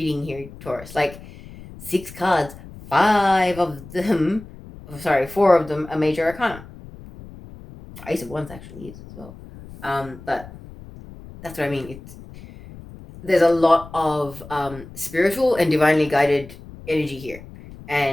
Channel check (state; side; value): noise; left; rumble, 17 dB below the sound